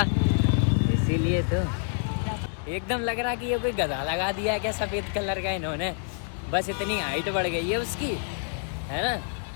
इसीलिए तो एकदम लग रहा कि ये कोई गधा लगा दिया है क्या सफेद कलर का इन्होंने। बस इतनी हाइट बढ़ गई है उसकी, है ना,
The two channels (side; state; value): right; silent; digital silence